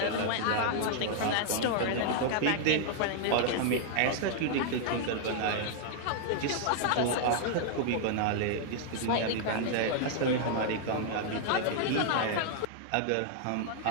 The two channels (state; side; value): different; both; correlation 0.00